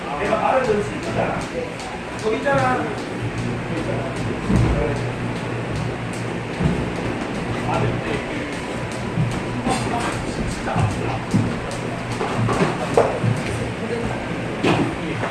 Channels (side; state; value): both; identical; correlation 1.00